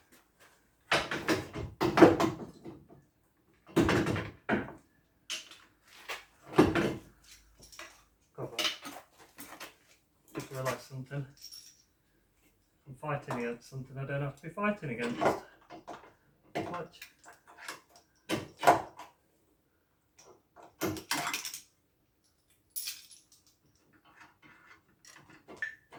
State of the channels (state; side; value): identical; both; correlation 1.00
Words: Just realised something. I'm fighting against something I don't have to be fighting against. Watch.